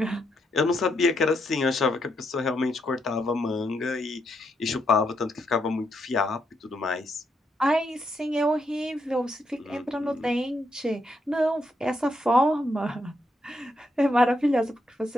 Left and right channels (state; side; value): normal; both; correlation 0.79